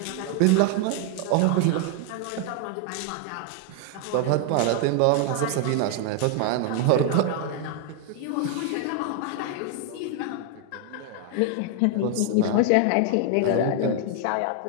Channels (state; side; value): different; both; correlation 0.00